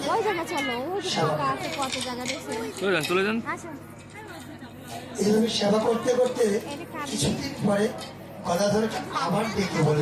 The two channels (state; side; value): identical; both; correlation 1.00